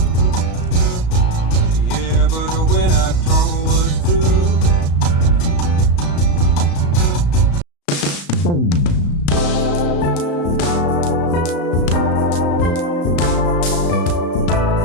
Yeah, but when I told was through.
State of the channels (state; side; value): late; right; 35 ms